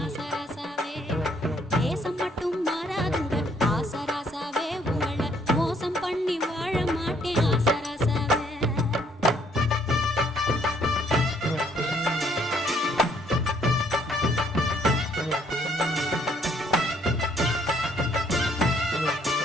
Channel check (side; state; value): both; normal; correlation 0.66